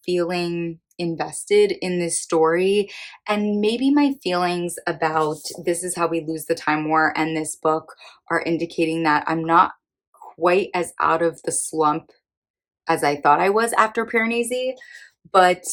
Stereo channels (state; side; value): identical; both; correlation 1.00